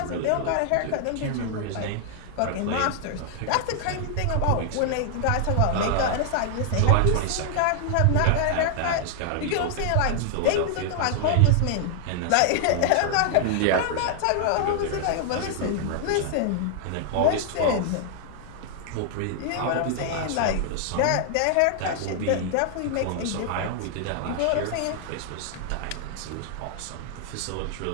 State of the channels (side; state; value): both; different; correlation -0.01